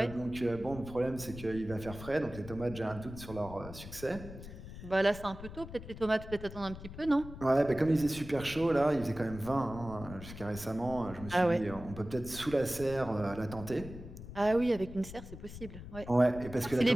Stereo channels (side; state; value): left; noise; rumble, 13 dB below the sound